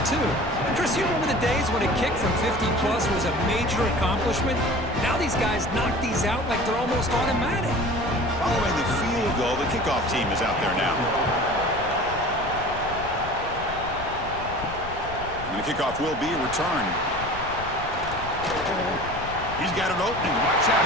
too. Chris, you remember the days when a kick from 50-plus was a major accomplishment? Now these guys knock these out like they're almost automatic. Following the field goal, the kickoff team is out there now. And the kickoff will be returned. He's got an opening. Watch out.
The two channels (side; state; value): left; noise; rumble, 12 dB below the sound